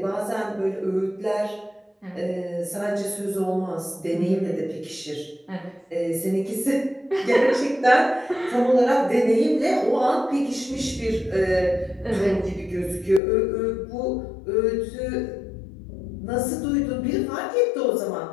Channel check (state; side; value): drops out; right; at 13.2 s